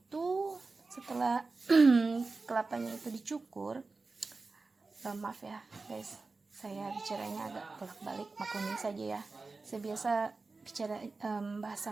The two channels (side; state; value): left; quieter; 3.8 dB